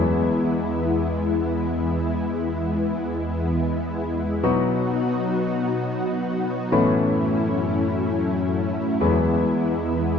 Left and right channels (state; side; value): normal; both; correlation 0.66